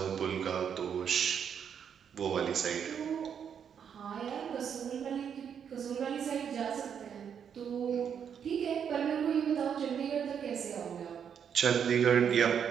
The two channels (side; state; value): left; quieter; 7.8 dB